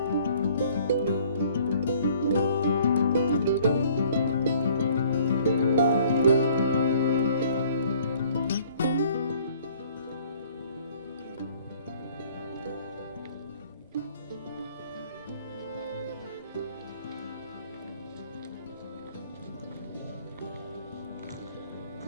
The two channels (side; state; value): both; inverted; correlation -0.56